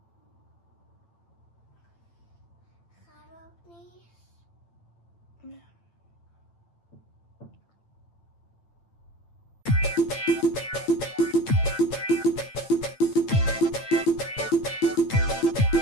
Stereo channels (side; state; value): right; late; 8.8 ms